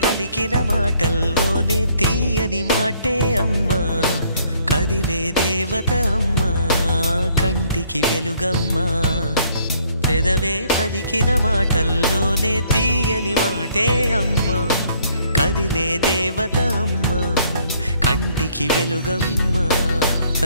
పలికిన మాటల్లోనే తీయని మాటే అమ్మా, కదిలే దేవత అమ్మా, కంటికి వెలుగమ్మా. పెదవే పలికిన మాటల్లోనే తీయని మాటే అమ్మా, కదిలే దేవత అమ్మా, కంటికి వెలుగమ్మా.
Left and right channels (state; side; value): inverted; both; correlation -0.64